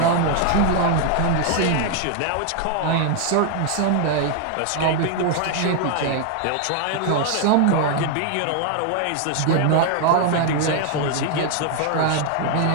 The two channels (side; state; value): both; different; correlation 0.00